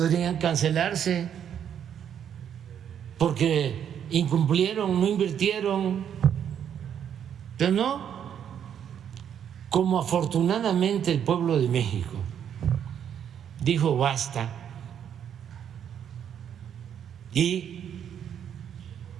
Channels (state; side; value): quieter; left; 8.9 dB